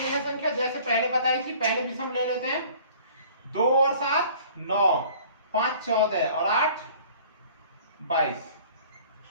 है संख्या, जैसे पहले बताई थी, पहले विषम ले लेते हैं, 2 और 7 9, 5 14 और 8 22।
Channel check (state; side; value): inverted; both; correlation -0.50